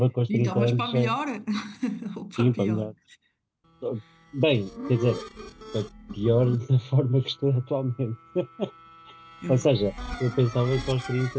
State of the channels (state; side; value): identical; both; correlation 1.00